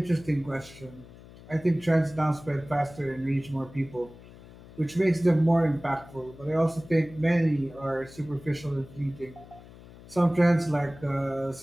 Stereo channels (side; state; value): left; noise; hum, 20 dB below the sound